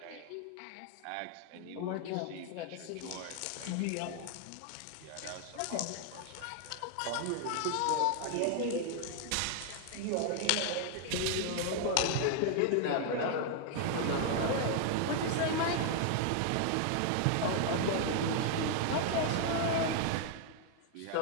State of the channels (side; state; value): both; different; correlation 0.00